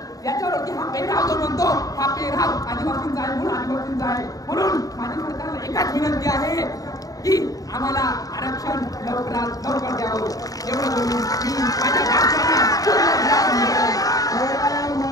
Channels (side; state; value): right; late; 0.17 ms